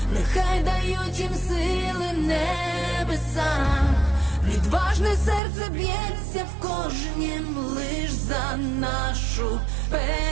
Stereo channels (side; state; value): left; drops out; at 5.4 s